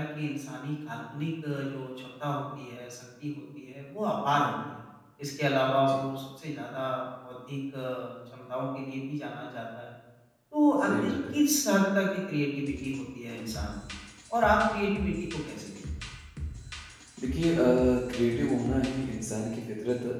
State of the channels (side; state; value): both; identical; correlation 1.00